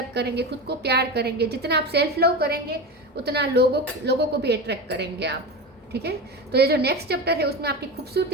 करेंगे, खुद को प्यार करेंगे। जितना आप सेल्फ लव करेंगे उतना लोगों को भी अट्रैक्ट करेंगे आप। ठीक है, तो ये जो नेक्स्ट चैप्टर है उसमें आपकी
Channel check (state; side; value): normal; both; correlation 0.24